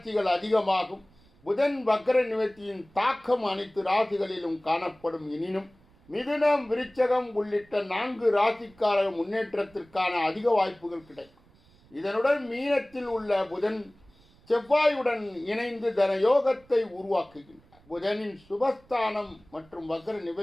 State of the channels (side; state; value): right; noise; rumble, 29 dB below the sound